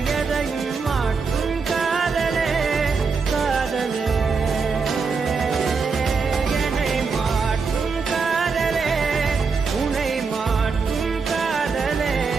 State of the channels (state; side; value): quieter; left; 5.0 dB